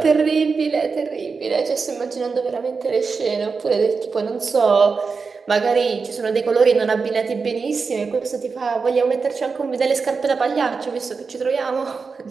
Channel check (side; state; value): left; quieter; 4.9 dB